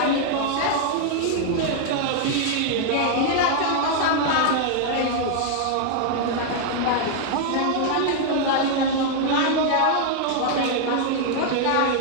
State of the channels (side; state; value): both; different; correlation 0.00